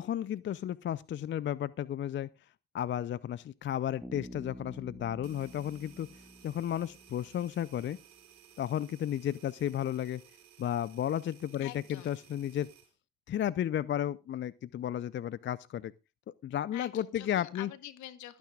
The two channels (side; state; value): right; quieter; 10.3 dB